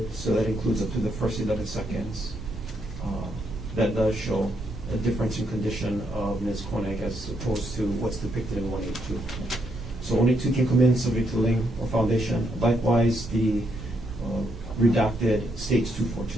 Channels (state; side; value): normal; both; correlation 0.76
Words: so that includes up to the first 11 seconds. That does show a difference in condition of Ms. Konig as opposed to what's depicted in 182. So only two can come in subject to lien or foundation. Likewise, the redacted states